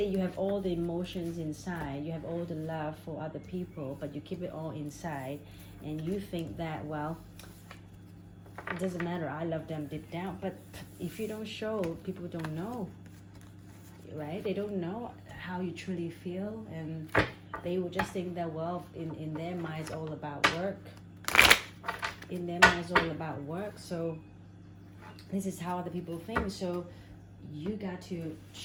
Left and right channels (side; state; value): both; identical; correlation 1.00